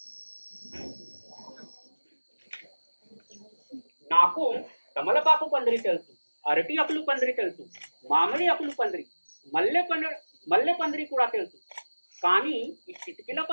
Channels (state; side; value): inverted; both; correlation -1.00